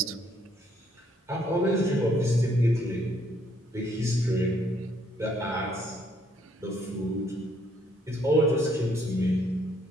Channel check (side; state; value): both; normal; correlation 0.68